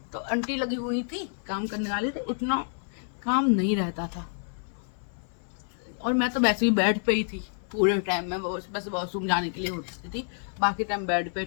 तो आंटी लगी हुई थी काम करने वाली, तो उतना काम नहीं रहता था, और मैं तो वैसे ही बेड पे ही थी पूरे टाइम में, बस वॉशरूम जाने के लिए होती थी, बाकी टाइम बेड पे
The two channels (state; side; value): silent; right; 57 dB below the other